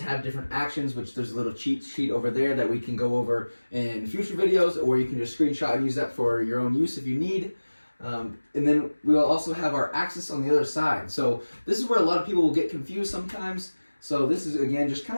different actions, which there's a little cheat sheet over there that we can go over in future videos, or you can just screenshot and use that for your own use if you need. And then we will also have our axis on the other side. So this is where a lot of people will get confused sometimes. So this is, again, just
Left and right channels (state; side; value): inverted; both; correlation -1.00